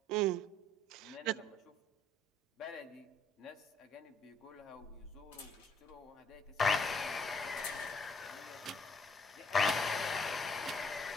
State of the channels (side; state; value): both; normal; correlation 0.65